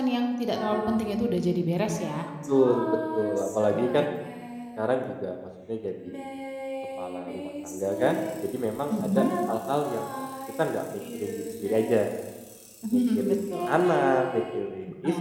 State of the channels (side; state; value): both; identical; correlation 1.00